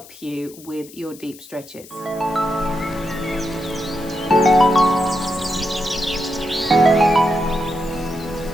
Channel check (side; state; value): left; noise; hiss, 20 dB below the sound